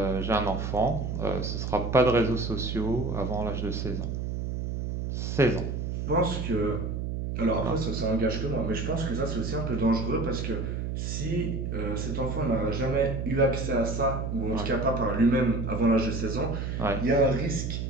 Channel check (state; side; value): noise; right; hum, 3 dB below the sound